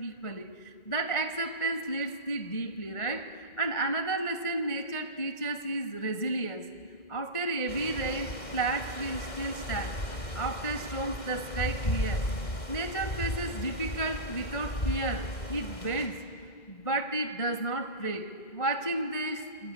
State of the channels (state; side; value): late; right; 2.1 ms